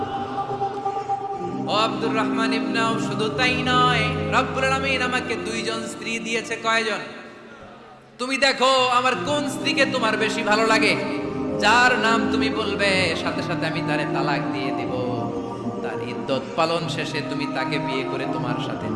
ও আব্দুর রহমান ইবনে আউফ, শুধু তাই নয়, রব্বুল আলামিন আমাকে 2 জন স্ত্রী দিয়েছে। কয়জন? তুমি দেখো আমার কোন স্ত্রীকে তোমার বেশি ভালো লাগে, যার নাম তুমি বলবে সাথে সাথে আমি তারে তালাক দিয়ে দিব। তার ইদ্দত পালন শেষে তুমি তাকে বিয়ে করে তোমার সাথে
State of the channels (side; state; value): both; identical; correlation 1.00